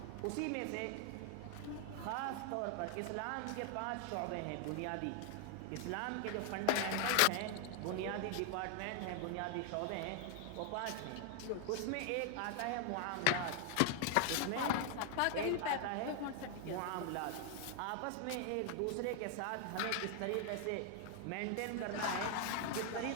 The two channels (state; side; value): different; both; correlation 0.00